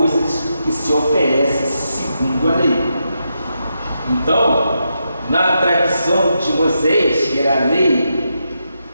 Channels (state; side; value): inverted; both; correlation -0.84